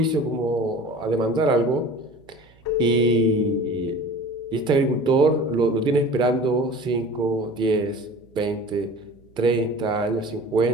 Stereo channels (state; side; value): noise; right; hum, 29 dB below the sound